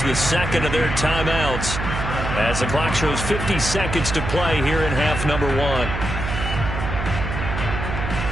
the second of their timeouts as the clock shows 50 seconds to play here in half number 1.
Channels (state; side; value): noise; right; hum, 4 dB below the sound